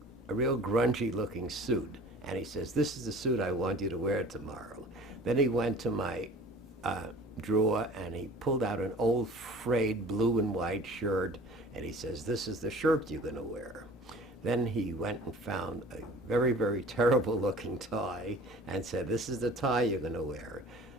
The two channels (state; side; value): normal; both; correlation 0.45